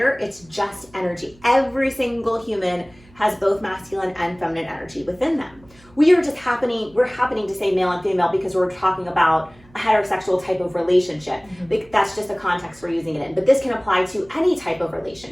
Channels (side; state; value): right; noise; hum, 27 dB below the sound